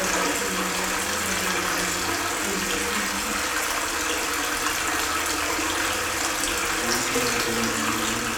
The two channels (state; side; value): identical; both; correlation 1.00